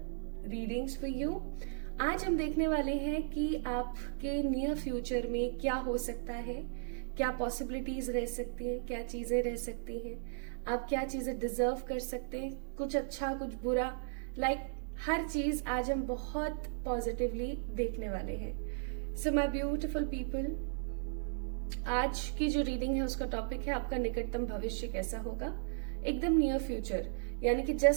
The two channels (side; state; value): left; silent; 54 dB below the other